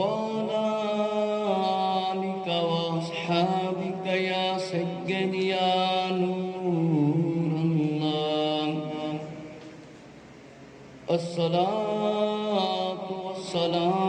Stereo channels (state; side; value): identical; both; correlation 1.00